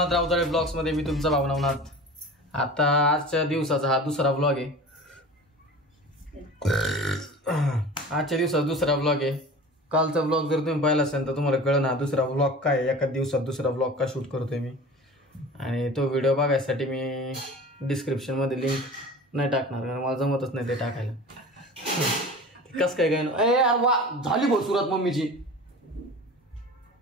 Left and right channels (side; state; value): both; normal; correlation 0.37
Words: राऊताळे ब्लॉग्स मध्ये. मी तुमचा भाऊ नवनाथ. आता आजच्या दिवसाचा हा दुसरा ब्लॉग आहे. आजच्या दिवसाचा दुसरा ब्लॉग आहे. कालचा ब्लॉग जर तुम्ही पाहिला असेल तर तुम्हाला कळलं ना दुसरा ब्लॉग काय आहे. एका दिवसात दुसरा ब्लॉग का शूट करतोय मी. आणि तो व्हिडिओ बघायसाठी मी डिस्क्रिप्शन मध्ये लिंक नाही टाकणार कारण मला जमतच नाही ते टाकायला. कस काय काय यार वा झाली भाऊ सुरात मम्मीची.